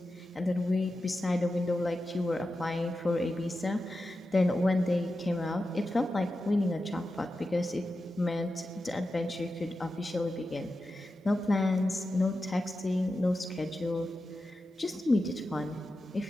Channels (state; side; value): normal; both; correlation 0.91